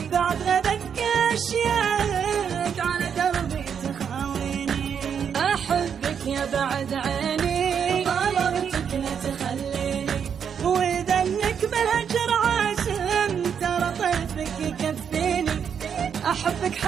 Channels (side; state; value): left; quieter; 7.5 dB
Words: بعد غدك أشياءك على دربي تخاويني. أحبك يا بعد عيني طلبتك لا تخليني، وإذا إنك بالهجر عازم ترى طيفك يكفيني. أحبك